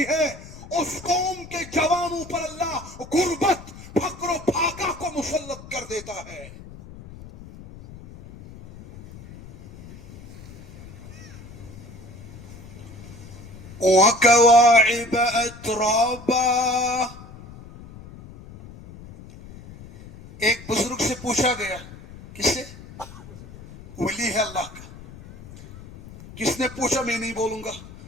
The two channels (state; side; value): noise; left; rumble, 17 dB below the sound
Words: ہے اس قوم کے جوانوں پر اللہ غربت، فقر و فاقہ کو مسلط کر دیتا ہے۔ وَكَوَاعِبَ أَتْرَابًا، ایک بزرگ سے پوچھا گیا، کس سے؟ ولی ہے اللہ کا، کس نے پوچھا؟ میں نہیں بولوں گا.